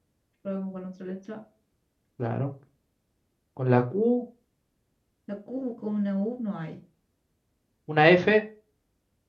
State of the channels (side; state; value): both; identical; correlation 1.00